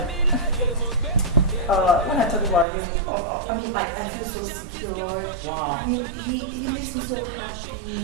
when I talk about him, I mean, like, I feel so secure. Wow. I mean, he makes me so happy.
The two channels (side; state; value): left; drops out; at 2.7 s